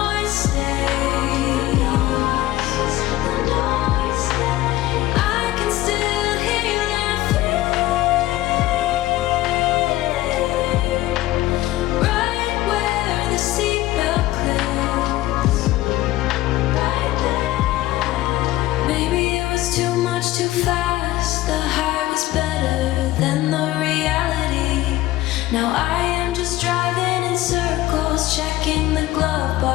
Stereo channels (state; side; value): quieter; right; 16.4 dB